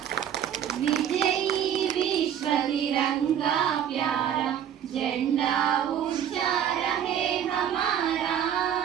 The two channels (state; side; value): quieter; left; 9.5 dB